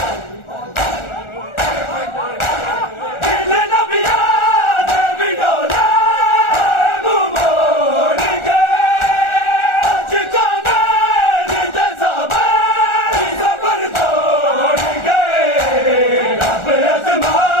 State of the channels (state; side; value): late; right; 1.4 ms